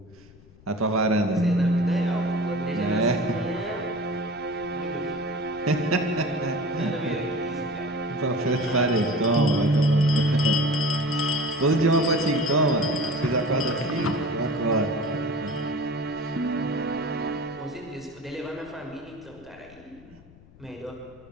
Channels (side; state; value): left; noise; rumble, 24 dB below the sound